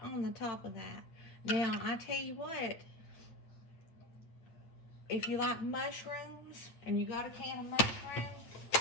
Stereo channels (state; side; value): late; right; 8.9 ms